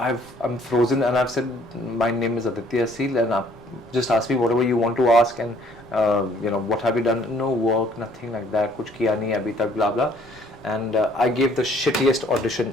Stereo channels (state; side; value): noise; left; rumble, 27 dB below the sound